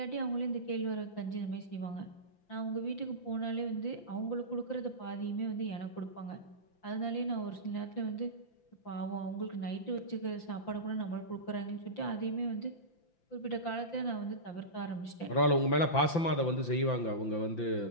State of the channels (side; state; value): right; late; 5.9 ms